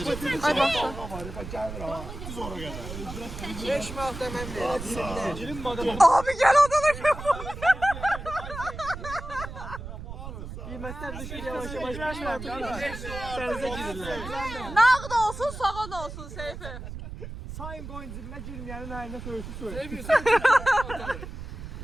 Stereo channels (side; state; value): right; noise; rumble, 10 dB below the sound